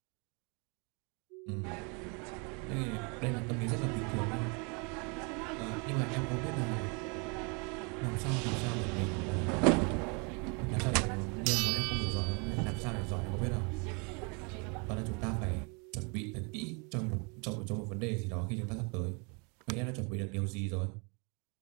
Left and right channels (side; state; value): left; quieter; 33.2 dB